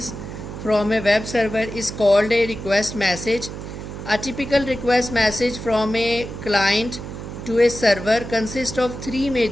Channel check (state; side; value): noise; right; hum, 9 dB below the sound